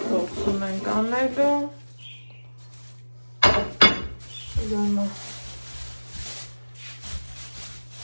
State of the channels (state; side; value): inverted; both; correlation -1.00